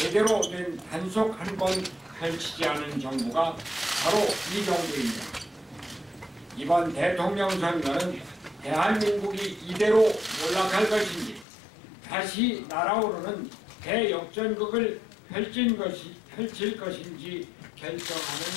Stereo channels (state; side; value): drops out; right; at 11.5 s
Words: 된 단속 한 번 펼치지 않은 정부가 바로 이 정부입니다. 이번 대통령 선거는 대한민국이 이대로 몰락할 것인지 다시 날아오르는 대역전극을 펼칠 것인지 결정하는